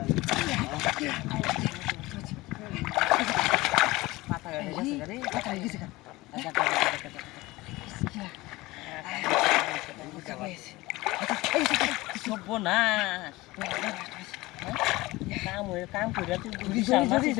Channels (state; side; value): quieter; right; 20.3 dB